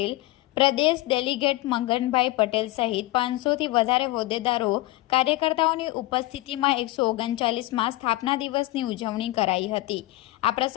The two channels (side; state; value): right; quieter; 18.4 dB